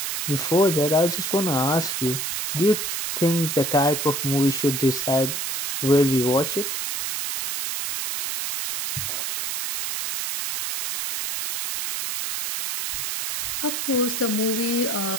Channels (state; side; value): noise; right; hiss, 3 dB below the sound